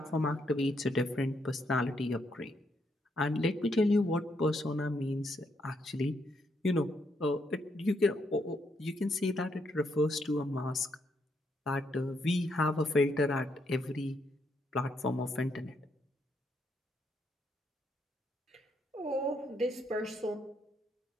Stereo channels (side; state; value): both; normal; correlation 0.76